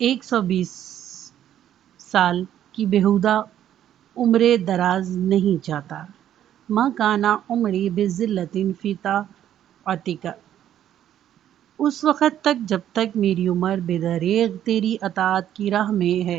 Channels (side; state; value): left; quieter; 11.0 dB